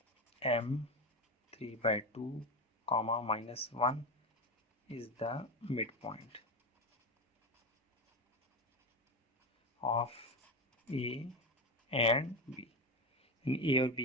m 3/2 comma -1 is the mid point of A and B. A और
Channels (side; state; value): both; normal; correlation 0.18